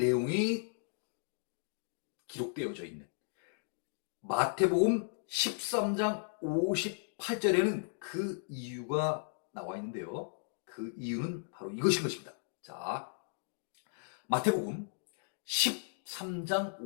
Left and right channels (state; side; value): silent; right; digital silence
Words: 기록되어져 있는 마태복음 13장 58절에는 그 이유가 나와 있는데요. 그 이유는 바로 이것인 것입니다. 자, 마태복음 13장